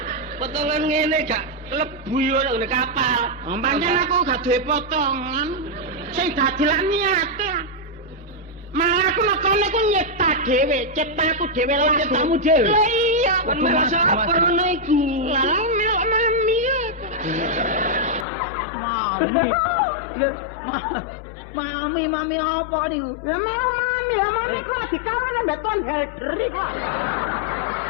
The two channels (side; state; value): right; drops out; at 18.2 s